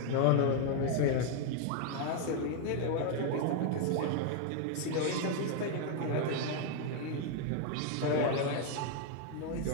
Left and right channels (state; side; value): different; both; correlation 0.00